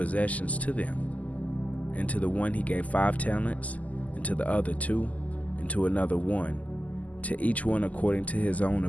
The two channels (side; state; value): right; late; 0.074 ms